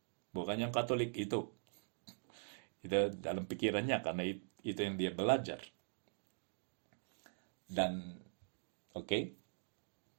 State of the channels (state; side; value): silent; left; digital silence